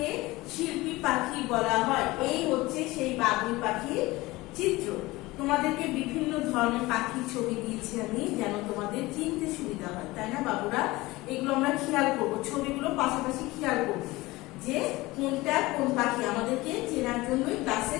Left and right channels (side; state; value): right; quieter; 20.3 dB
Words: শিল্পী পাখি বলা হয়। এই হচ্ছে সেই বাবুই পাখির চিত্র। তোমাদেরকে বিভিন্ন ধরনের পাখির ছবি দিয়েছি আমি, যেন তোমাদের চিনতে সুবিধা হয়, তাই না বাবুরা? এগুলো আমরা খেয়াল করবো, ছবিগুলো পাশাপাশি খেয়াল করবো যে কোনটা কোন পাখি, আমাদেরকে চেনার জন্যই ক্লাসে